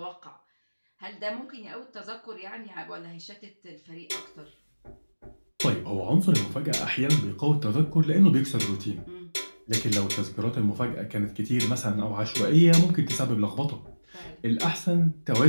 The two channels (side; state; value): both; inverted; correlation -1.00